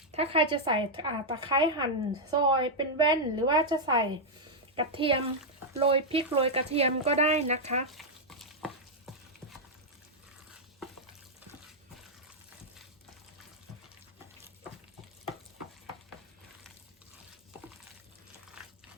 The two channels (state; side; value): normal; both; correlation -0.03